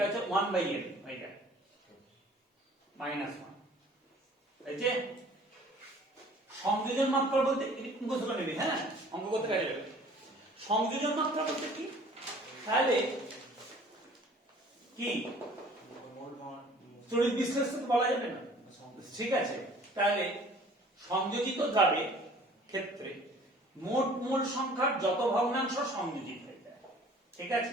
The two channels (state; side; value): normal; both; correlation 0.51